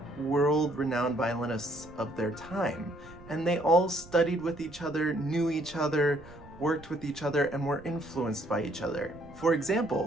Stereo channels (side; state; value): right; noise; rumble, 20 dB below the sound